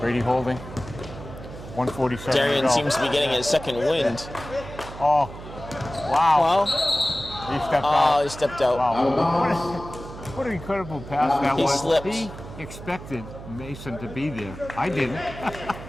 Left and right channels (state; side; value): noise; right; hum, 13 dB below the sound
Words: holding. 147 Darian to go. seems to be getting his second wind. Oh, wow. Well, He stepped out. he stepped out. Wow. What an incredible pass that He was. slipped. He expected Mason to be there. I didn't.